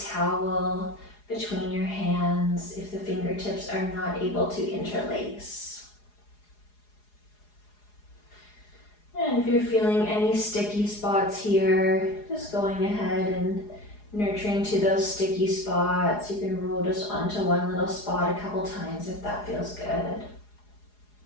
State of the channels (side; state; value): right; late; 4.8 ms